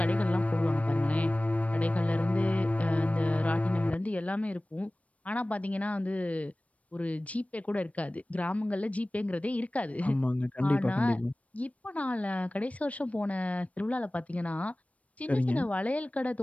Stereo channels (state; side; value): late; right; 0.066 ms